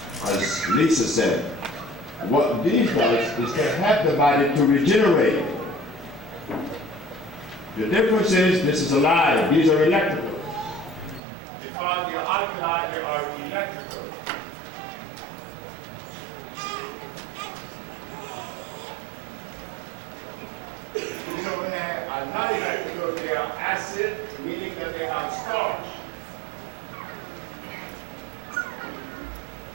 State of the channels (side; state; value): left; drops out; at 11.2 s